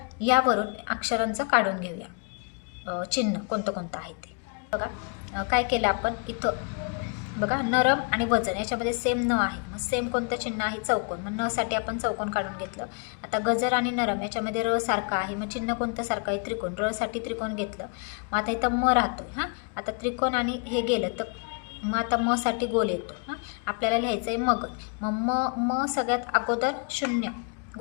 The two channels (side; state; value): right; quieter; 37.8 dB